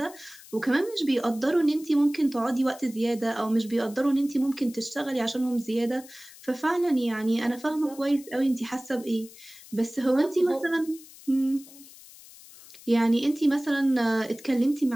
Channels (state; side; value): noise; left; hiss, 20 dB below the sound